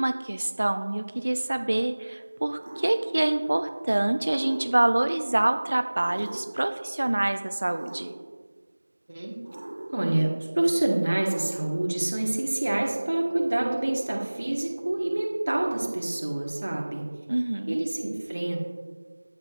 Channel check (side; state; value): both; inverted; correlation -1.00